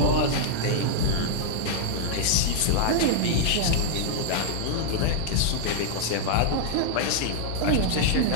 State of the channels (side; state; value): both; different; correlation -0.01